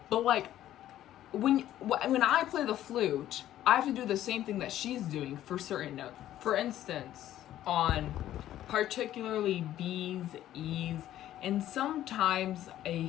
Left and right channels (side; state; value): right; quieter; 12.7 dB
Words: But like, when I play the flute, I have to do the same thing that she's doing for certain notes. For instance, on particularly B's, E's, and sometimes a